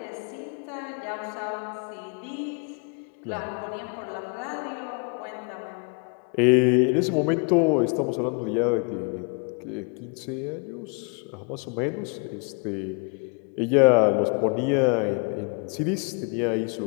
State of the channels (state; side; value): quieter; right; 36.5 dB